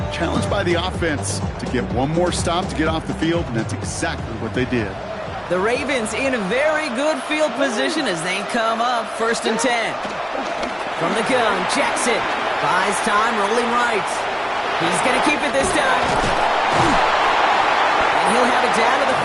Challenged by the offense to get one more stop to get off the field, and that's exactly what they did. The Ravens in a very good field position as they come up 1st and 10. From the gun, Jackson buys time, rolling right. He's going to keep it this time. And he'll have it down to the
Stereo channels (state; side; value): identical; both; correlation 1.00